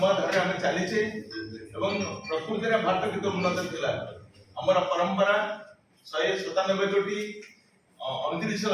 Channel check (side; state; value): both; identical; correlation 1.00